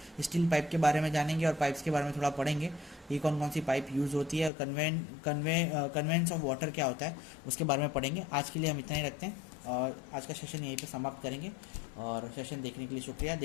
स्टील पाइप के बारे में जानेंगे और पाइप्स के बारे में थोड़ा पढ़ेंगे, ये कौन कौन सी पाइप यूज़ होती है, कन्वेंस ऑफ वाटर क्या होता है उसके बारे में पढ़ेंगे। आज के लिए हम इतना ही रखते हैं और आज का सेशन यहीं पे समाप्त करेंगे। और सेशन देखने के लिए शुक्रिया।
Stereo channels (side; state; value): right; drops out; at 4.5 s